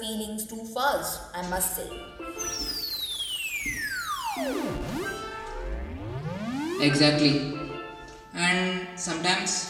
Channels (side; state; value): both; identical; correlation 1.00